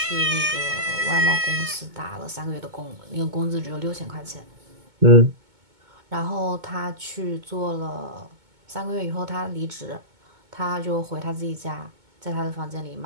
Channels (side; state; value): left; late; 2.2 ms